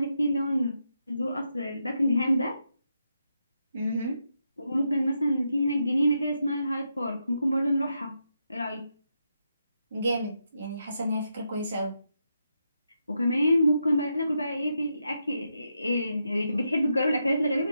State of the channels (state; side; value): inverted; both; correlation -0.83